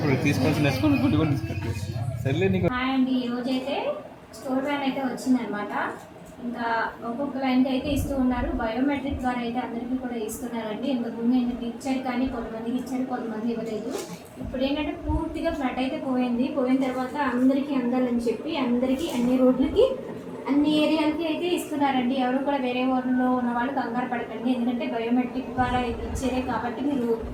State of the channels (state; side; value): identical; both; correlation 1.00